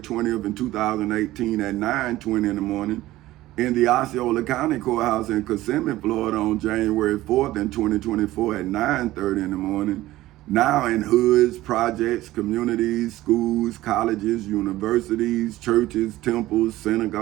in 2018 at 9:20 in the morning, in the Osceola County Courthouse in Kissimmee, Florida on January 4th in 2024 at 9:30 in the morning, now in hoods, projects, communities, schools, colleges, universities, churches, temples,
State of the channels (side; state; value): left; quieter; 16.4 dB